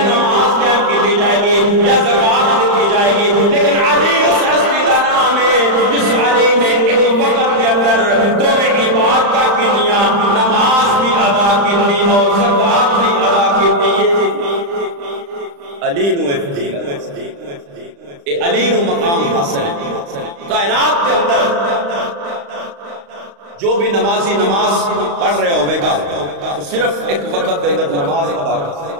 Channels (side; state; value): left; late; 35 ms